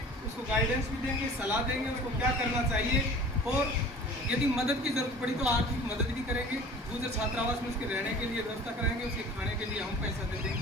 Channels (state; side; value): normal; both; correlation 0.44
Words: उसको गाइडेंस भी देंगे, सलाह देंगे उसको क्या करना चाहिए, और यदि मदद की जरूरत पड़ी तो आर्थिक मदद भी करेंगे। दूसरे छात्रावास में उसके रहने के लिए व्यवस्था कराएंगे, उसके खाने के लिए हम पैसा दे देंगे